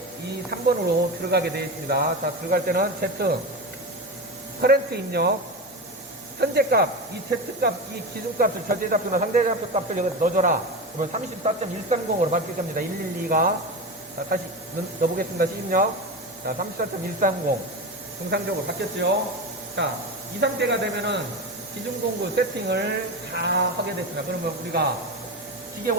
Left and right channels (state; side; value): normal; both; correlation 0.22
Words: 이 3번으로 들어가게 되어 있습니다. 자, 들어갈 때는 Z 커렌트 입력 현재 값, 이 Z 값, 이 기준 값을 절대좌표나 상대좌표 값을 여기 넣어줘라. 그러면 34.130으로 바뀔 겁니다. 112가. 자, 다시 넣어보겠습니다. 시입력. 자, 34.130. 정상적으로 바뀌었죠. 자, 이 상태가 되면은 기준 공구 세팅을 다 하게 됐습니다. 그러면 우리가 기계